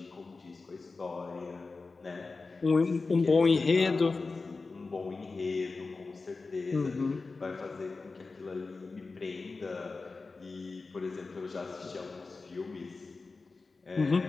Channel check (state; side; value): quieter; right; 4.0 dB